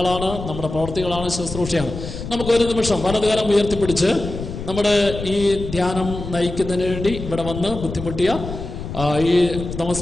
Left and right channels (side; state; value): left; noise; rumble, 8 dB below the sound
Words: നമ്മുടെ പ്രവൃത്തികളാണ്, ശുശ്രൂഷയാണ്. നമുക്കൊരു നിമിഷം വലതുകരം ഉയർത്തിപ്പിടിച്ച് നമ്മുടെ ഈ ധ്യാനം നയിക്കുന്നതിന് വേണ്ടി ഇവിടെ വന്ന് ബുദ്ധിമുട്ടിയ ഈ